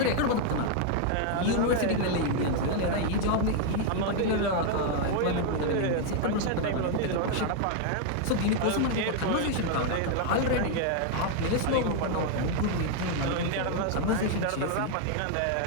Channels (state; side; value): different; both; correlation 0.00